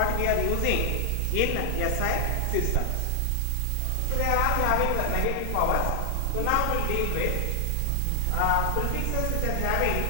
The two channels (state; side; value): different; both; correlation 0.00